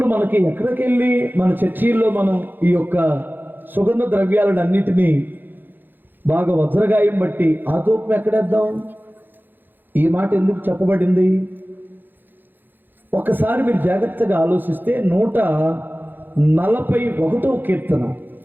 మనకి ఎక్కడికి వెళ్ళి మన చర్చీల్లో మనం ఈ యొక్క సుగంధ ద్రవ్యాలను అన్నిటినీ బాగా వజ్రగాయం బట్టి ఆ ధూపం ఎక్కడేద్దాం? ఈ మాట ఎందుకు చెప్పబడింది? ఒకసారి మీరు జాగ్రత్తగా ఆలోచిస్తే 141వ కీర్తన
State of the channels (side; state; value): left; late; 0.092 ms